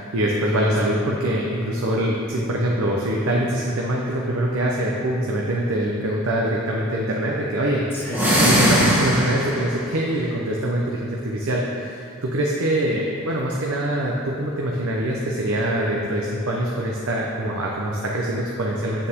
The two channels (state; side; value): normal; both; correlation 0.44